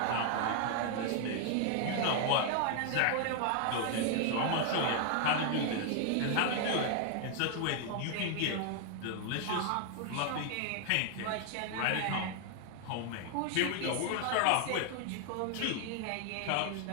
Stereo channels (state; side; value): different; both; correlation 0.00